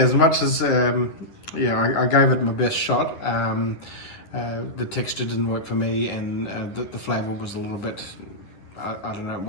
much as, yeah, I gave it my best shot. The texture didn't work for me, and the flavour was a little bit, I don't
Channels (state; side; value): late; right; 10 ms